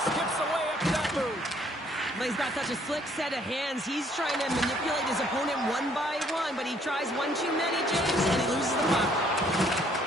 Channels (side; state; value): both; normal; correlation 0.64